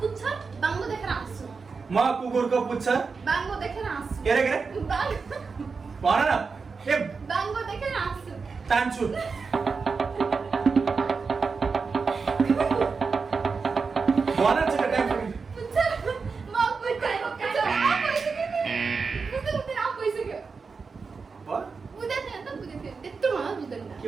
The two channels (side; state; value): left; quieter; 4.9 dB